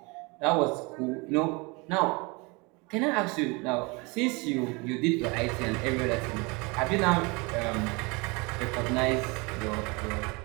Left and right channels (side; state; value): left; quieter; 27.7 dB